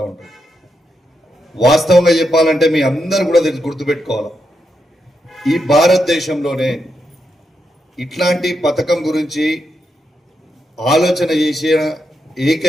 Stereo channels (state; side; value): normal; both; correlation 0.84